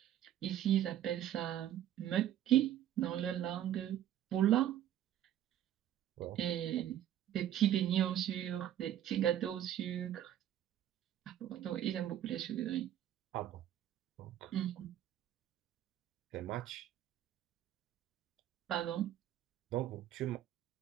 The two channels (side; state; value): left; quieter; 11.5 dB